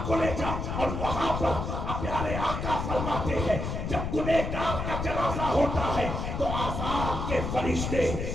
کو لے جاؤ۔ اور وہاں پر پیارے آقا فرماتے ہیں جب گنہگار کا جنازہ ہوتا ہے تو عذاب کے فرشتے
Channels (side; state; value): left; noise; rumble, 3 dB below the sound